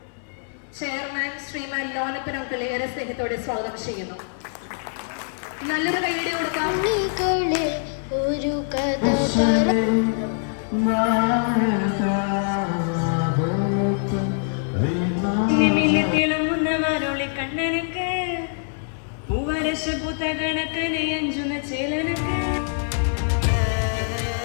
ചെയർമാൻ ശ്രീമാൻ ലോനപ്പൻ അങ്കിൾ ഏറെ സ്നേഹത്തോടെ സ്വാഗതം ചെയ്യുന്നു. നല്ലൊരു കൈയ്യടി കൊടുക്കാം. ഒരു കഥ തിളങ്ങുന്നവരോളി കണ്ണനക്ക് പൂവരശ പൂത്ത കണക്കനെ അഞ്ചുന്ന ചേലനക്ക്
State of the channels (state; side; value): silent; right; digital silence